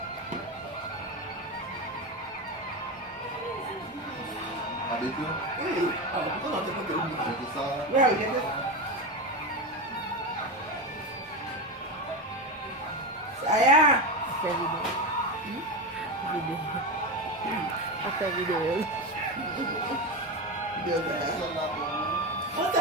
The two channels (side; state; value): both; normal; correlation 0.17